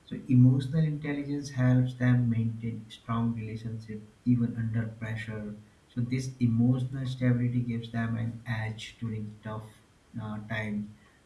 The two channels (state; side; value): identical; both; correlation 1.00